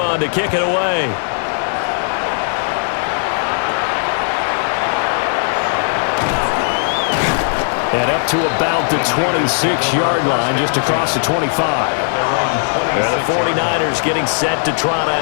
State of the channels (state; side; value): silent; right; digital silence